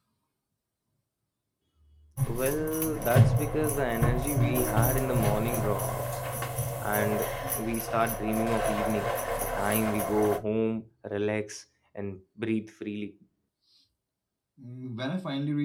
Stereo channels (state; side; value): identical; both; correlation 1.00